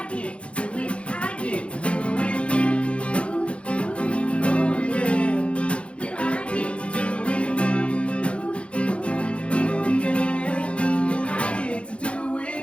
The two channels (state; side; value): late; right; 0.060 ms